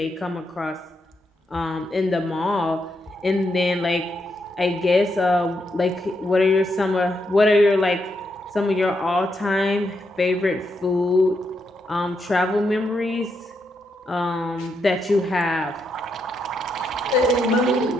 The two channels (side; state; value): both; normal; correlation 0.81